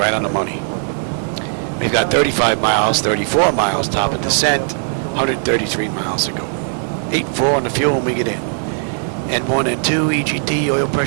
on the money. We've got 35 miles, 34 miles top of descent. 133 miles to go. 8.4 on the fuel when we get in. N1 and 2 EGT oil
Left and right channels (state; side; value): silent; left; 64 dB below the other